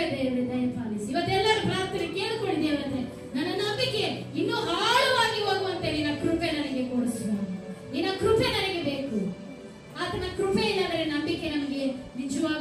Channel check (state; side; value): identical; both; correlation 1.00